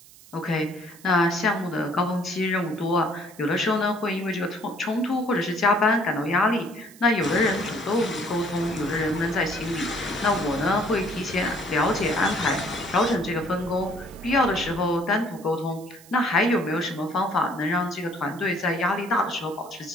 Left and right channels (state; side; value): noise; right; hiss, 22 dB below the sound